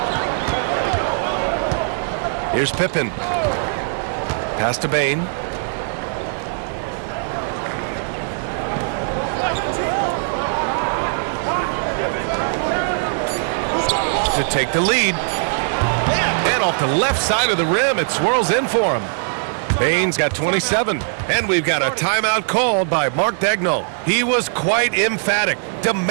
Here's Pippen. Pass to Bain. to take the lead. And off the left side of the rim, it swirls in for him. Bain's got 27, and we've got a timeout called by Mark Daigneault. He was quite emphatic,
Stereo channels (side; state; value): left; silent; digital silence